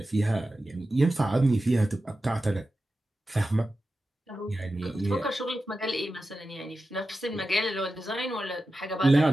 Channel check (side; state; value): both; normal; correlation 0.93